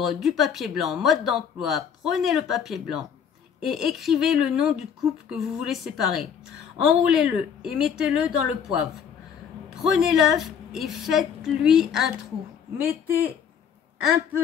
du papier blanc. Mode d'emploi, prenez le papier blanc et écrivez le nom du couple que vous voulez séparer. Enroulez-le et mettez-le dans le poivre. Prenez l'œuf et faites-lui un trou. Mettez un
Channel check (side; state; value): right; quieter; 7.7 dB